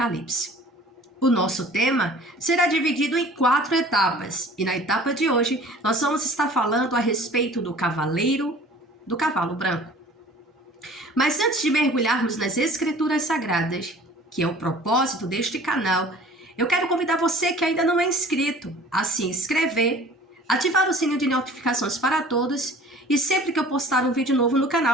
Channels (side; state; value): both; normal; correlation 0.47